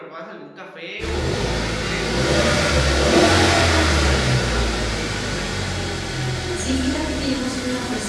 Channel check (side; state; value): both; identical; correlation 1.00